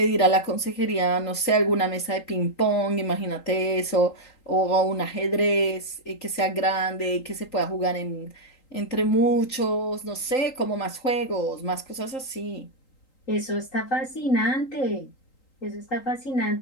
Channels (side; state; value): right; late; 3.8 ms